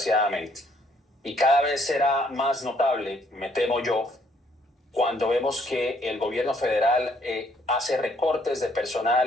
Y cada vez será más notable, me temo yo, cuando vemos que el gobierno federal hace recortes de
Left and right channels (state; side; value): normal; both; correlation 0.67